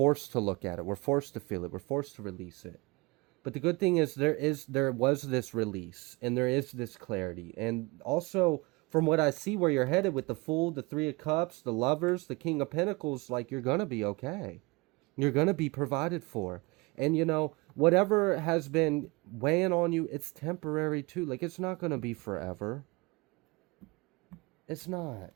to look at it. We're forced to feel it. We're forced to release it. But the good thing is there was this release, and there is this clarity. And also, from what I see where you're headed with the Fool, the Three of Cups, the Lovers, the King of Pentacles, like, you're going to be okay. You're going to be provided for. And, you know, whatever has been weighing on you, it's temporary too. Like, it's not going to be forever. It's not.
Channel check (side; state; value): left; quieter; 25.2 dB